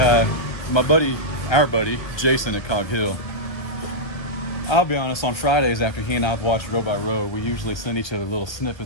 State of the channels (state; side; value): late; right; 1.2 ms